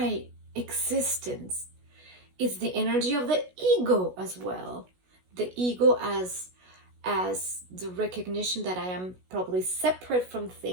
existence. It's the energy of the ego as well. The ego as the recognition that I am probably separate from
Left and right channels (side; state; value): left; late; 16 ms